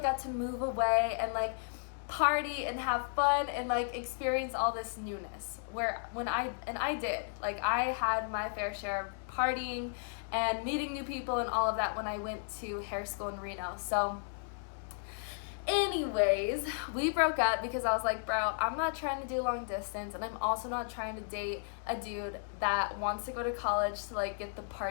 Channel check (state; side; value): silent; right; digital silence